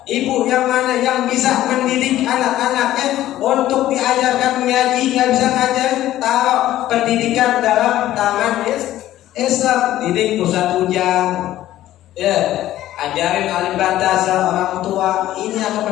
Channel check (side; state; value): right; quieter; 13.8 dB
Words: Ibu yang mana yang bisa mendidik anak-anaknya untuk diajarkan mengaji, nggak bisa ngajar, taruh pendidikan dalam tangan Islam. Didik pusat ujang, ya, ajarin alim bantasa orang tua. Ini